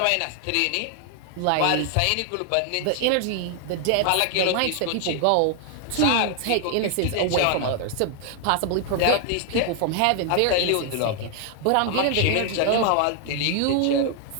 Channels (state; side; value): different; both; correlation 0.00